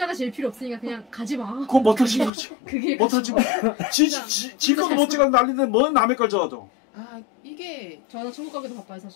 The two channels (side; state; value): right; drops out; at 2.3 s